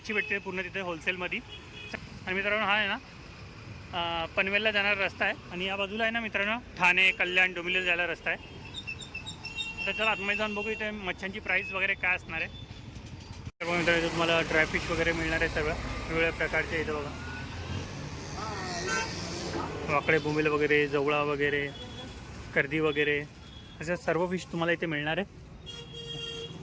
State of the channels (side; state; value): both; identical; correlation 1.00